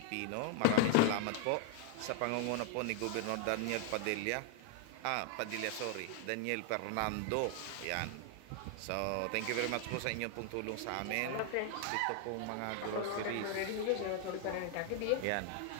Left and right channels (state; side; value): different; both; correlation 0.00